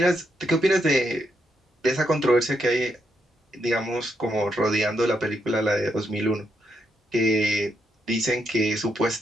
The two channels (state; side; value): normal; both; correlation 0.79